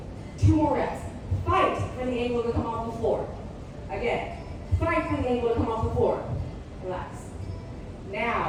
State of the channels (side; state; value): both; identical; correlation 1.00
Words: 2 more reps. Fight for the ankle to come off the floor. Again, fight for the ankle to come off the floor. Relax.